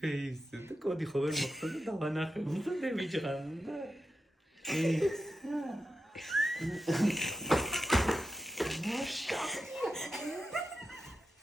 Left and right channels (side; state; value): both; normal; correlation 0.90